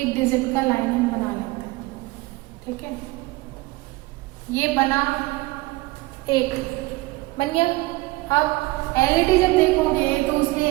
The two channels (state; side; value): quieter; left; 21.5 dB